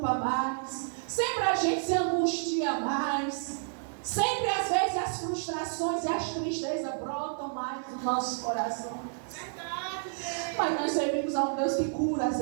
mais, sempre a gente se angustia mais. Sempre, às vezes, as frustrações e as tristezas brotam mais no nosso coração. Mas nós servimos a um Deus que cura as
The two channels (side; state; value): left; silent; 58 dB below the other